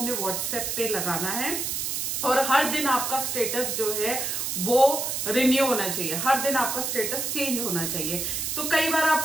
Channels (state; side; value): noise; right; hiss, 2 dB below the sound